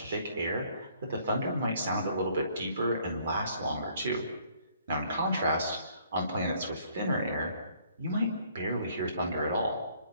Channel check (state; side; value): inverted; both; correlation -0.63